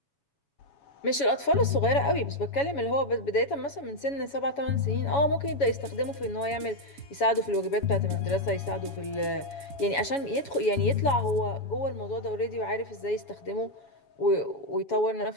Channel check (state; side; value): late; right; 7.1 ms